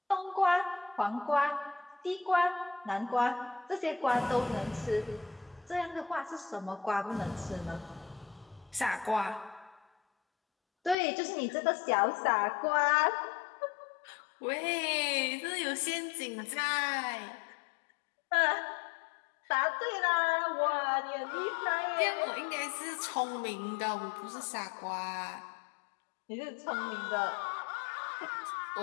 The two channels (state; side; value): drops out; right; at 11.0 s